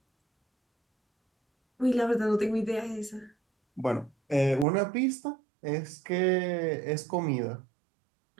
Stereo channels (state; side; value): drops out; left; at 4.7 s